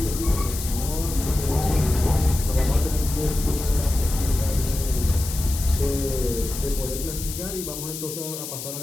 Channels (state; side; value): noise; left; hiss, 8 dB below the sound